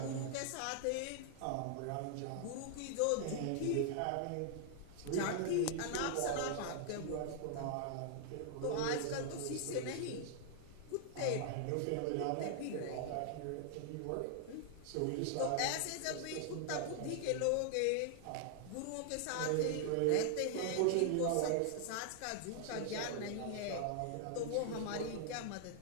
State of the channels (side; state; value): both; different; correlation 0.00